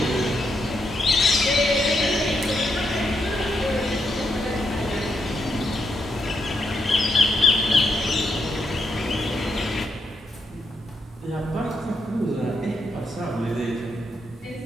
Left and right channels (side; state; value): both; normal; correlation 0.80